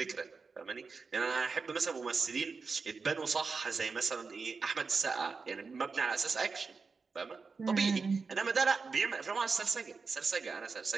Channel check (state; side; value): quieter; left; 4.7 dB